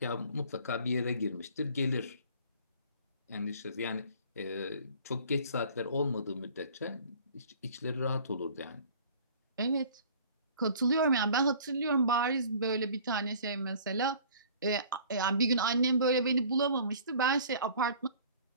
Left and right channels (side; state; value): both; inverted; correlation -0.49